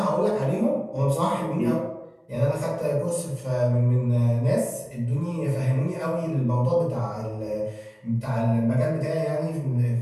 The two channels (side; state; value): both; identical; correlation 1.00